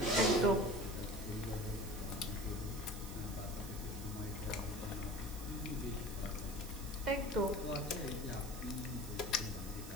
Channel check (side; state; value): right; noise; hiss, 12 dB below the sound